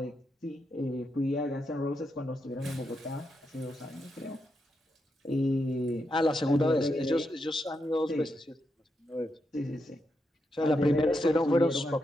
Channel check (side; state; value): both; normal; correlation 0.84